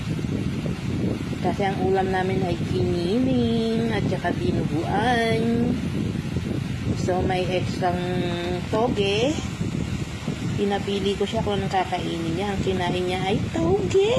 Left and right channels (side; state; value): both; identical; correlation 1.00